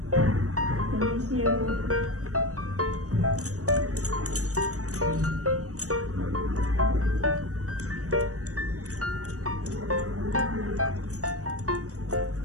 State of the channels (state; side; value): late; left; 0.65 ms